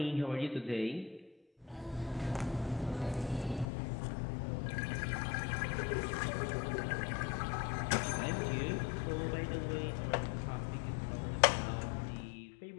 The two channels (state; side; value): drops out; right; at 3.7 s